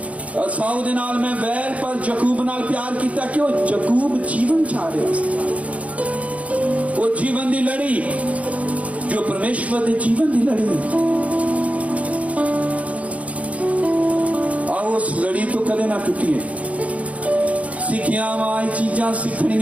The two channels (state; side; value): late; left; 0.066 ms